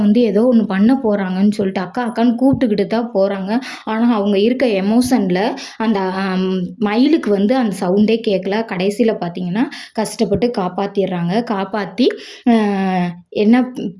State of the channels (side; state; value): both; identical; correlation 1.00